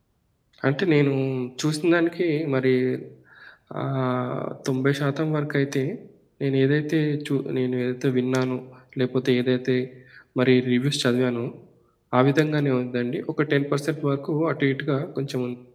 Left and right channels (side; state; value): both; identical; correlation 1.00